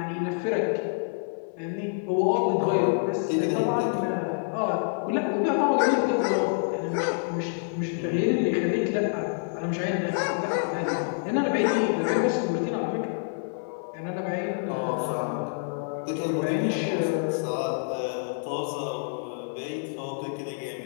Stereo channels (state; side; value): silent; right; 60 dB below the other